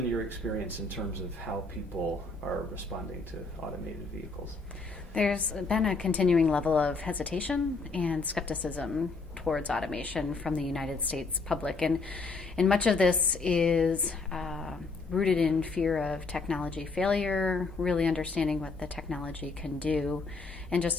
your experience in terms of how people are responding to automated vehicles? There's been a continuing level of hesitation and skepticism towards automation from the United States public. And much of this is rooted in fear of technology failure, really understanding what the technology can do, and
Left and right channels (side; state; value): right; quieter; 4.0 dB